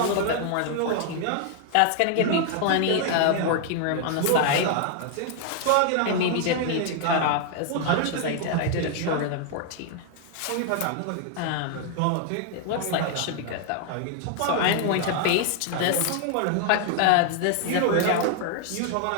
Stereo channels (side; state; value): both; different; correlation 0.00